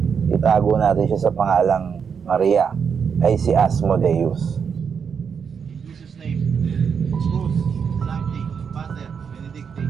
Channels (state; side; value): quieter; left; 6.7 dB